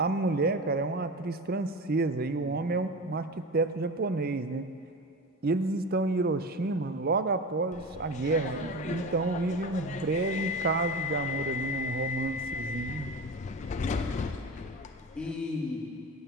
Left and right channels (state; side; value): normal; both; correlation 0.29